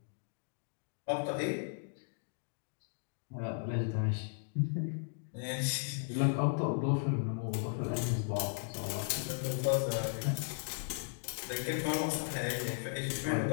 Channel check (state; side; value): silent; right; digital silence